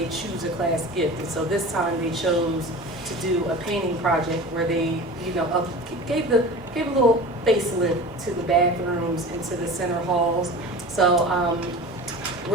choose a class gift, and so this time they chose to do a painting project where they, gave a little facelift to the bathrooms and to the center halls. So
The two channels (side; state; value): both; normal; correlation 0.35